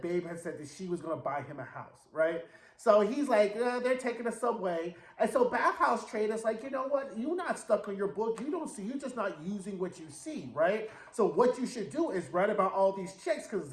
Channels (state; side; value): identical; both; correlation 1.00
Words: Babe had said that she was gonna buy him a house, right? So he's like, they're taking the subway. And so Bathhouse Trade is like, you know what? You're not stuck on your book. You don't see, you're just not using what you see, right? So what you should do is write about all these chicks because